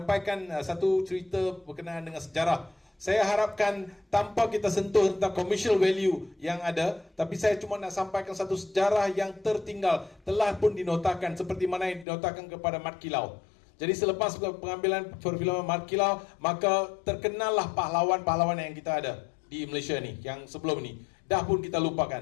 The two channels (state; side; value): drops out; right; at 12.1 s